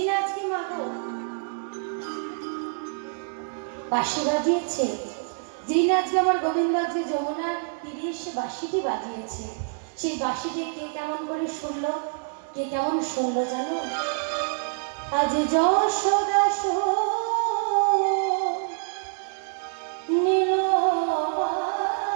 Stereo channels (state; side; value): silent; left; digital silence